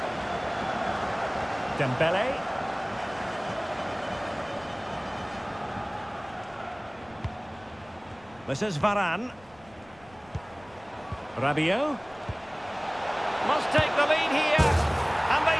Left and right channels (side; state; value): left; noise; rumble, 26 dB below the sound